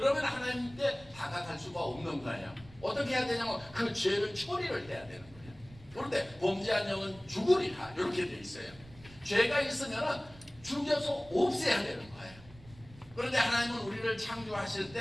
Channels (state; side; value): noise; right; rumble, 21 dB below the sound